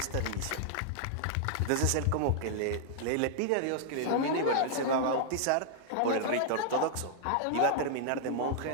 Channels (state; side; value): different; both; correlation -0.01